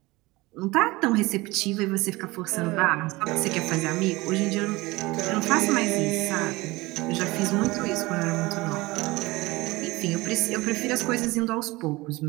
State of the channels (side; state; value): left; quieter; 21.6 dB